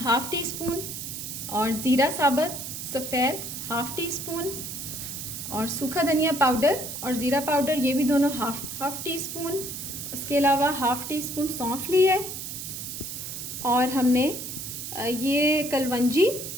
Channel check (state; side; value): noise; right; hiss, 7 dB below the sound